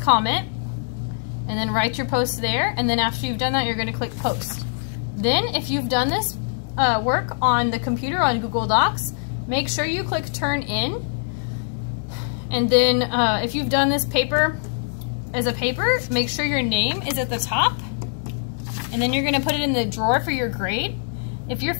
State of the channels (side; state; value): right; silent; digital silence